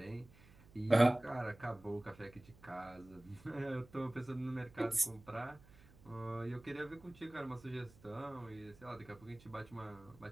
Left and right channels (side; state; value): right; noise; hum, 23 dB below the sound